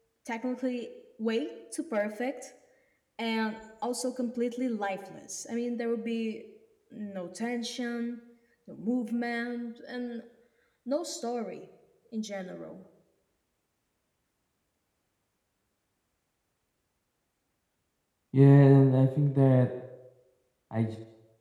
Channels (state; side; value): identical; both; correlation 1.00